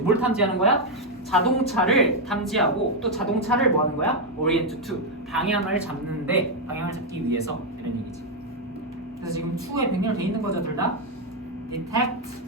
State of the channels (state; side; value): normal; both; correlation 0.02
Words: 뭘 탐지하는 거야? 자동차를 탐지하고 또 자동차를 뭐 하는 거야? orient to 방향을 잡는데 방향을 잡기 위해서 이런 얘기지. 그래서 지금 to에 병렬돼 있는 거죠, 둘 다. detect